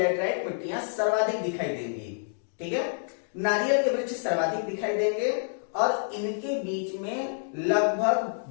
मिट्टियां सर्वाधिक दिखाई देंगी, ठीक है। नारियल के वृक्ष सर्वाधिक दिखाई देंगे, और इनके बीच में लगभग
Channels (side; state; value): right; silent; digital silence